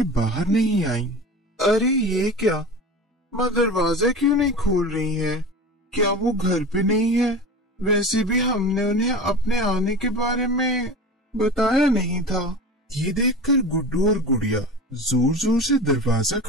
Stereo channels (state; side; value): normal; both; correlation 0.30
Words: बाहर नहीं आई। अरे ये क्या, माँ दरवाजा क्यों नहीं खोल रही है? क्या वो घर पे नहीं है? वैसे भी हमने उन्हें अपने आने के बारे में बताया नहीं था। ये देखकर गुड्डू और गुड़िया जोर जोर से दरवाजा